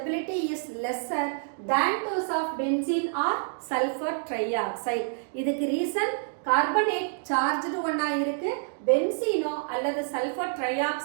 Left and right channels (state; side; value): silent; left; digital silence